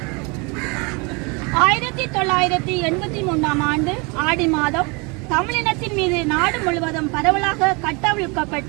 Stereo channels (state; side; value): quieter; left; 29.8 dB